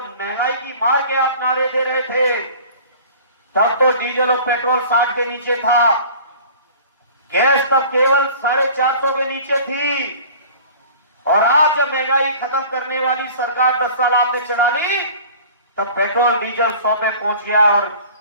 की मार के आप नारे दे रहे थे, तब तो डीजल और पेट्रोल 60 के नीचे था, गैस तब केवल 450 के नीचे थी, और आज जब महंगाई खत्म करने वाली सरकार 10 साल आपने चला ली, तब पेट्रोल डीजल 100 पे पहुंच गया, और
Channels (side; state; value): both; inverted; correlation -0.44